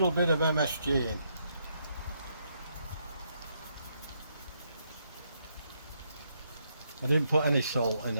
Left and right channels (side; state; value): both; inverted; correlation -0.76